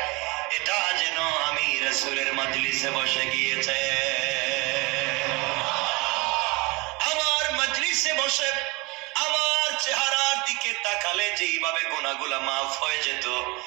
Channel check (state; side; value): quieter; left; 26.1 dB